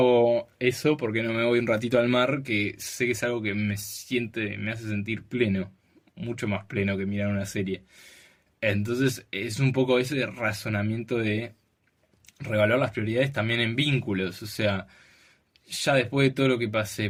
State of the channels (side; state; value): both; identical; correlation 1.00